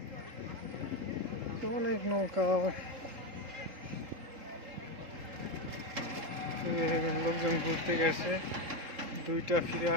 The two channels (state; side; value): late; left; 3.8 ms